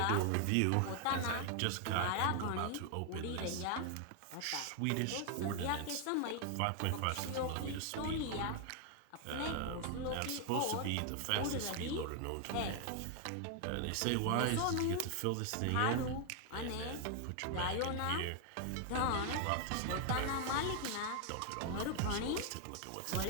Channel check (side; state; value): both; different; correlation 0.00